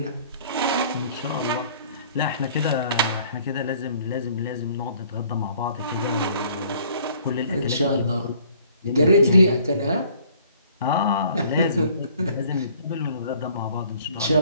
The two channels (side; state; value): both; inverted; correlation -0.57